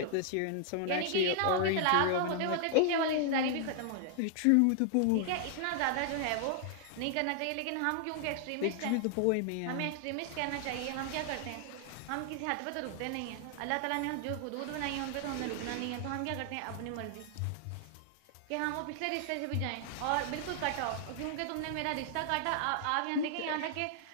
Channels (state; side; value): different; both; correlation 0.00